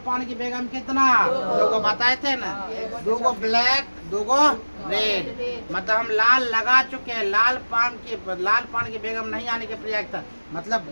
पान की बेगम कितना 2 गो बताए थे ना, 2 गो ब्लैक 2 गो रेड, मतलब हम लाल लगा चुके हैं। लाल पान की बेगम नहीं आने की प्रयागता मतलब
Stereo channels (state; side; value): inverted; both; correlation -1.00